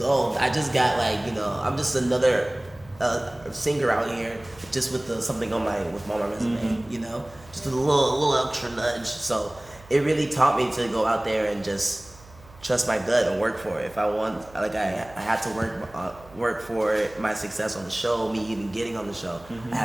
I just got like, you know, I'm just another singer out here, just with something on my resume. You know, just a little extra nudge. So it really taught me to go out there and just trust my gut and work for it. If I want, like, I had to work for my success on the show, me even getting on the show. I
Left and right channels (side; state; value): right; noise; hum, 23 dB below the sound